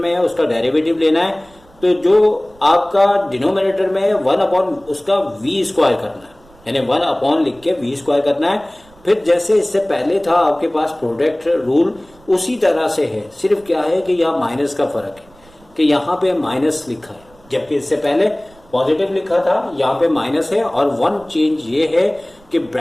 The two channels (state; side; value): noise; right; rumble, 28 dB below the sound